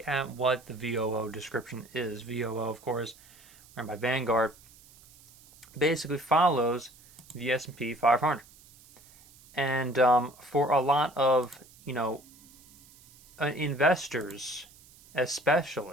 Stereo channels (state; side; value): noise; right; hiss, 25 dB below the sound